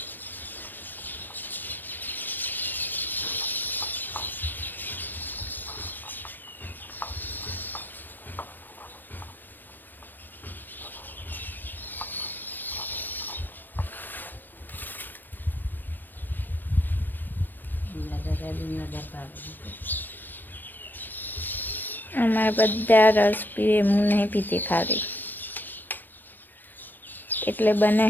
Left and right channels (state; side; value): late; right; 0.092 ms